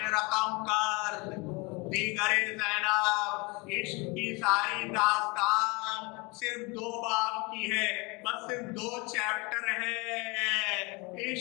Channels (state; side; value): quieter; right; 27.5 dB